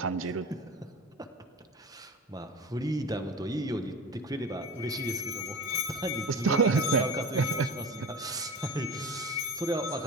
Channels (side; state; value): both; normal; correlation 0.33